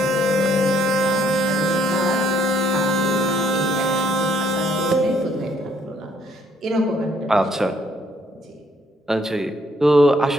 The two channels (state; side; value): normal; both; correlation 0.67